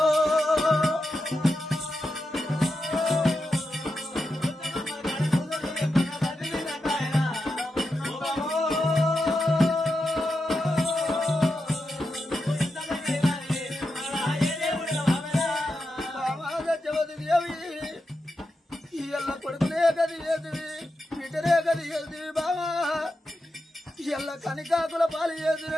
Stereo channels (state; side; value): normal; both; correlation 0.88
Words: కొడుకునే గది ఏదివి బిడ్డనే గది ఏదివి బావా. ఎల్ల కని కాకుల పాలు